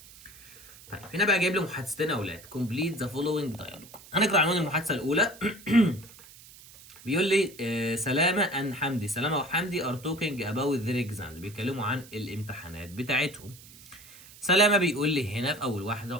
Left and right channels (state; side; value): noise; right; hiss, 20 dB below the sound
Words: طيب هنا بقى جايب لي محادثتين يا اولاد complete the following dialogue. هنقرا عنوان المحادثه الاولى بيقول لي سلامة and حمدي، سلامة وحمدي are talking about their exam، بيتكلموا عن الامتحانات بتاعتهم. سلامة بيقول لي هنا في أول